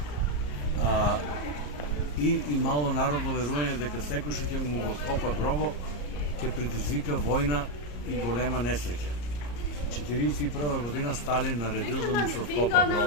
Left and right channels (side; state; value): right; late; 34 ms